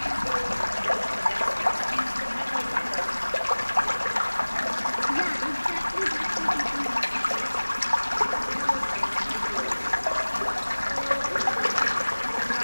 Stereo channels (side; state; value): both; inverted; correlation -1.00